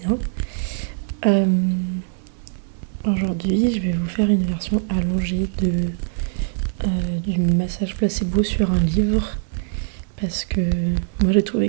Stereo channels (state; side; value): silent; left; 64 dB below the other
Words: bien. Aujourd'hui, je vais vous faire une version allongée du massage placebo sur un livre parce que moi j'ai trouvé